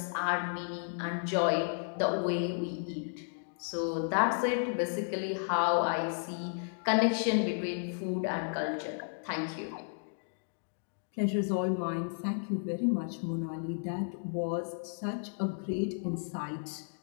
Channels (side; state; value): right; silent; digital silence